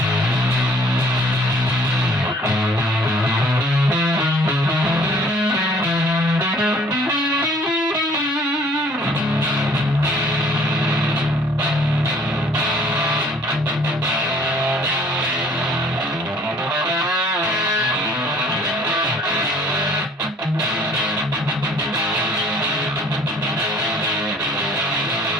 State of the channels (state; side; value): normal; both; correlation 0.56